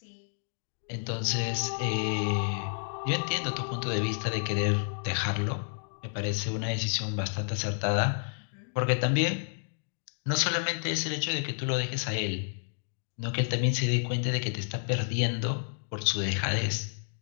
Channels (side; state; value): right; silent; digital silence